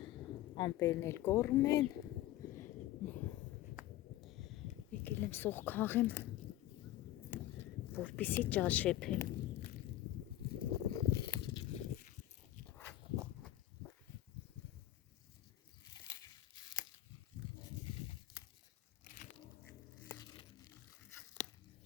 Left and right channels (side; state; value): right; quieter; 14.3 dB